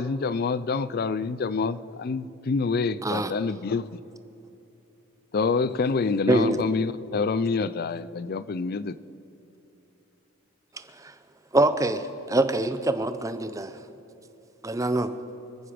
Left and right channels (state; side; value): normal; both; correlation 0.45